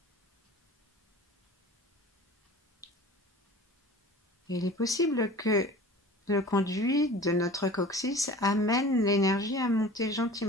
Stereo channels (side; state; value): both; normal; correlation 0.41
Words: Il est possible que le conduit de notre coccyx amène l'énergie à monter